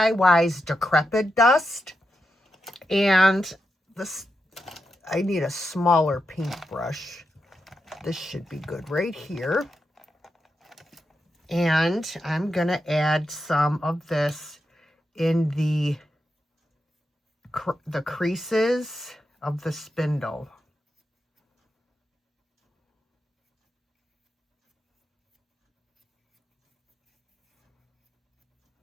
Decrepit Dust. And this, I need a smaller paintbrush. This should be good right here. And I'm going to add some of this in the the creases of the spindle.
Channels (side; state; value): both; normal; correlation 0.87